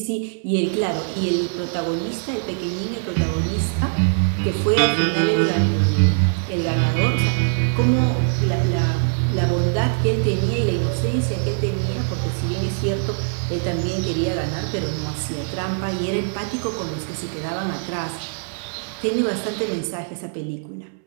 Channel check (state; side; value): silent; left; 64 dB below the other